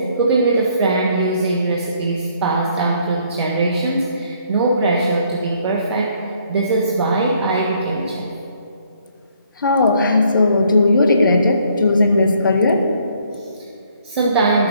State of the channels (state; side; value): inverted; both; correlation -0.66